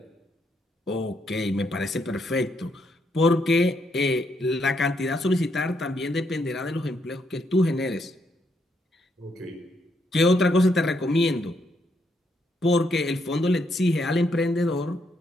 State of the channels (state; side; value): normal; both; correlation 0.76